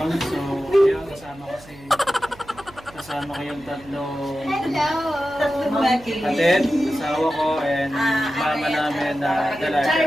So, ayun, kasama ko yung tatlong kapatid, asawa ko, and mama namin na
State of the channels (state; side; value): noise; right; hum, 22 dB below the sound